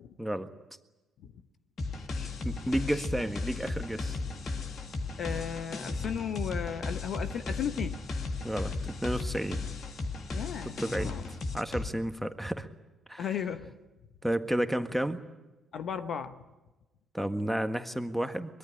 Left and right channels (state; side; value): normal; both; correlation 0.86